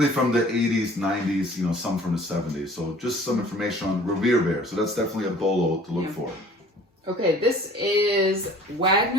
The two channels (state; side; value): normal; both; correlation 0.50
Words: from the 80s, 90s, some from the 70s. So just some information on Ware. So that's definitely a BOLO to look for. Okay, this is